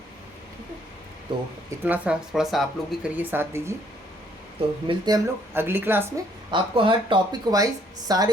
ठीक है, तो इतना सा थोड़ा सा आप लोग भी करिए, साथ दीजिए। तो मिलते हैं हम लोग अगली क्लास में। आपको हर टॉपिक वाइज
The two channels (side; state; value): both; normal; correlation 0.66